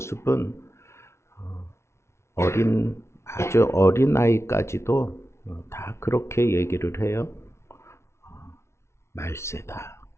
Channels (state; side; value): late; right; 0.13 ms